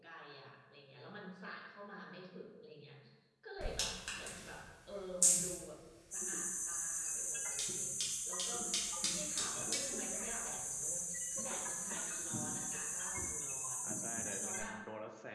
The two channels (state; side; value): identical; both; correlation 1.00